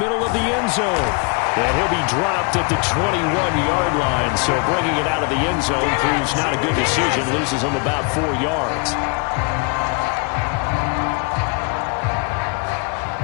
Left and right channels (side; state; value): right; quieter; 31.8 dB